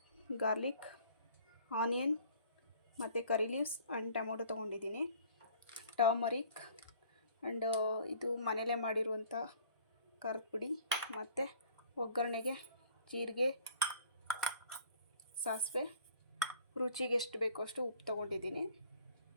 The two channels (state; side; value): inverted; both; correlation -0.53